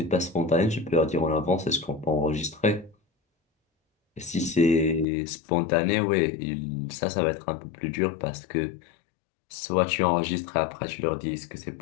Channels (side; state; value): right; drops out; at 5.1 s